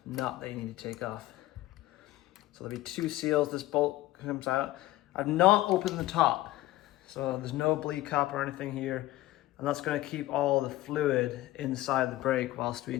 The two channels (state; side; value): quieter; right; 16.6 dB